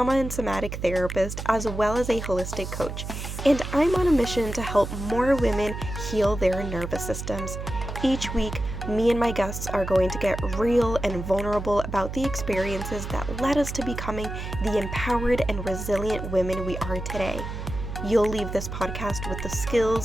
and somatic therapist, as well as a holistic coach, and I'm on a mission to help more women heal their nervous systems. Each week, me and my guests are going to get real and vulnerable about the experiences that led us to becoming the empowered and resilient women we are today. You'll leave this podcast with the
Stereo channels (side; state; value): right; noise; hum, 7 dB below the sound